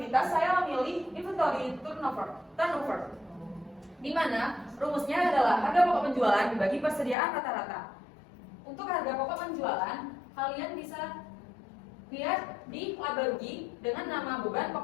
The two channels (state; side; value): drops out; right; at 7.2 s